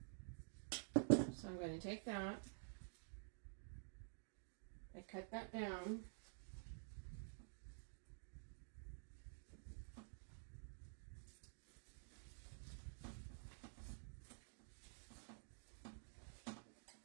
So I'm going to take that, I cut that down,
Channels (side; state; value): left; silent; digital silence